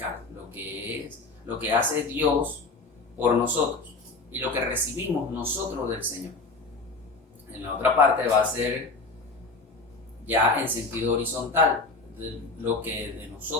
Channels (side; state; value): right; quieter; 3.6 dB